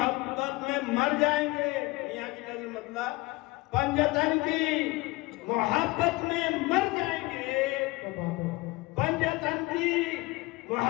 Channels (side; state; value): right; quieter; 22.4 dB